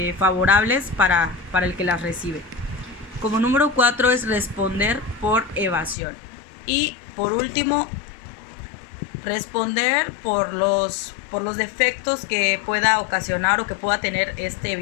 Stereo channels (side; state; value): right; drops out; at 6.0 s